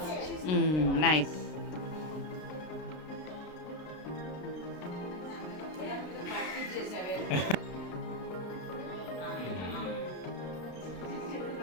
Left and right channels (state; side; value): late; right; 33 ms